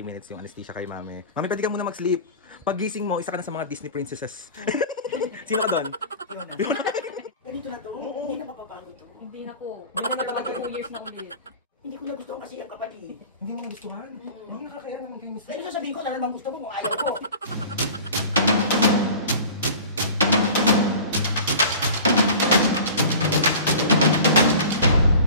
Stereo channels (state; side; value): inverted; both; correlation -0.39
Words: minutes yung anesthesia kay Mami. Mami, pwede ka muna mag-sleep. Pag gising mo, isa ka na sa mga Disney princesses. Sino ka doon? Ganito na to? Hindi na mapapagod to? Hindi na po. Hindi na po 2 years na ulit. Hindi ko na gusto kasi ang kapatid. Hindi mo nagustuhan? Mami, nakakaya naman kayo, Miss. Pero sasabihin ko na naman gusto mo kung ayaw ko.